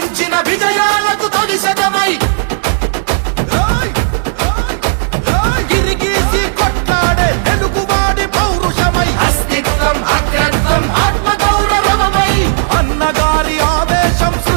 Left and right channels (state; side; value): silent; left; digital silence